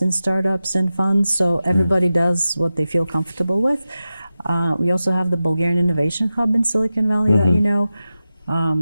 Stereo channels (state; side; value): inverted; both; correlation -0.94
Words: in startups and funds. So everybody does what they feel comfortable with. We also have the Bulgarian Innovation Hub in Silicon Valley that you know.